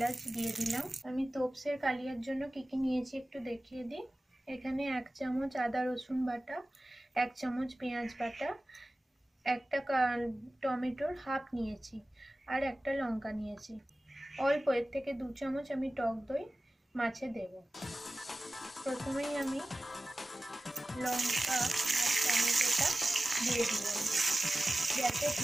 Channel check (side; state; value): both; normal; correlation 0.96